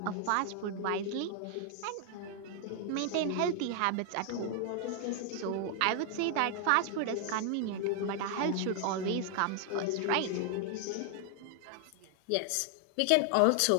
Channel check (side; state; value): both; different; correlation 0.00